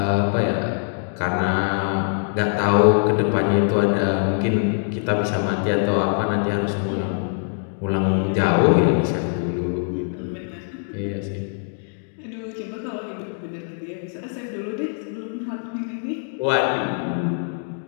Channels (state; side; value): silent; right; 63 dB below the other